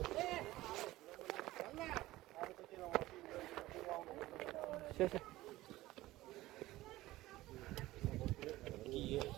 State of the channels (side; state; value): left; quieter; 17.2 dB